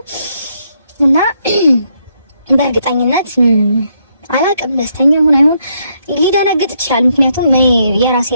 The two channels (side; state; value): both; inverted; correlation -0.75